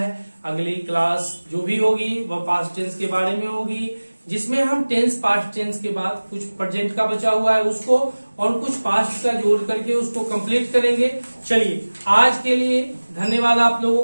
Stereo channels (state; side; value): inverted; both; correlation -1.00